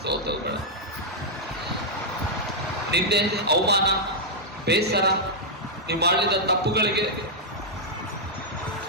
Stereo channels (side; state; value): both; normal; correlation -0.06